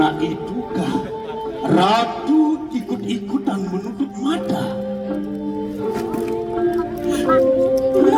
itukah Ratu ikut-ikutan menutup mata?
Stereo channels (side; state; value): both; identical; correlation 1.00